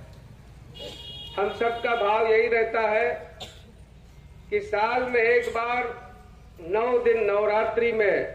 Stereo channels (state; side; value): identical; both; correlation 1.00